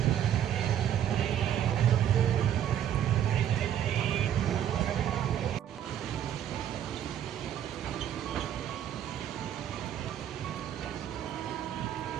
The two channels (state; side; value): quieter; left; 10.2 dB